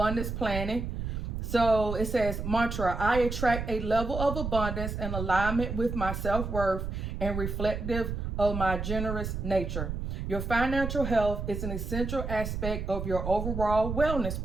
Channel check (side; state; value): right; noise; rumble, 4 dB below the sound